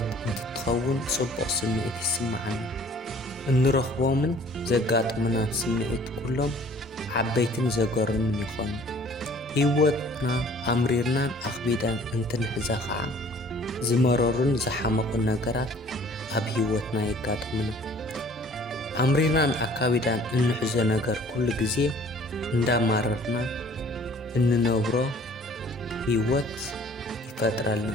እንትትኸውን ጽቡቕ ስምዒት ይስማዓና። እንረኽቦምን ዘጋጥሙናን ስምዒት ኩሎም ዓበይትን ዘገርምን ይኾኑ። ህይወትና ኣምሪርናን ኣኽቢዳን እንትንሕዛ ኸዓ ዝመረሩን ዝሓመቑን ነገራት ኣብ ህይወትና የጋጥሙና። ኣምሪርናን ኣካቢዳን እንሕዞ ነገር ኩሉ ግዜ እንዳማረርና እንነብሮ ህይወት ይፈጥረልና።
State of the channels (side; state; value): both; normal; correlation 0.53